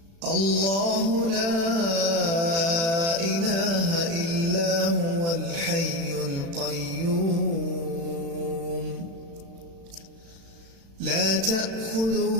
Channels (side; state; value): left; late; 36 ms